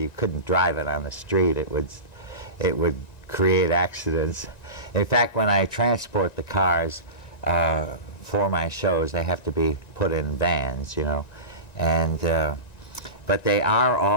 couldn't drive it on the street. It would create accidents. In fact, when I transport the cars for my shows, they have to be put in vans, and but they are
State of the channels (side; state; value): right; late; 1.9 ms